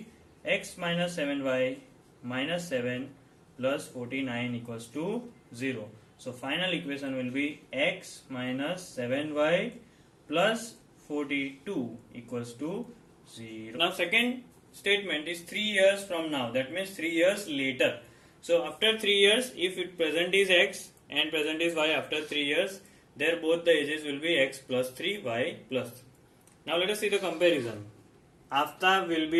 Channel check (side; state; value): both; identical; correlation 1.00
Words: X minus 7Y minus 7 plus 49 equals to 0. So final equation will be X minus 7Y plus 42 equals to 0. Now second statement is 3 years from now, that means 3 years later. So after 3 years, if it present is X and present is Y, after 3 years, there both the ages will be X plus 3, Y plus 3. Now let us see the comparison. Aftab will